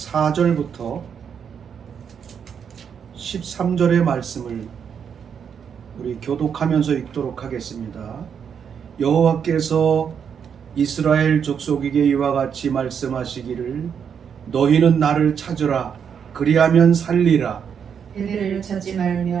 13절의 말씀을 우리 교독하면서 읽도록 하겠습니다. 여호와께서 이스라엘 족속에게 이와 같이 말씀하시기를 너희는 나를 찾으라 그리하면 살리라. 베델을 찾지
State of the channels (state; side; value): quieter; left; 7.4 dB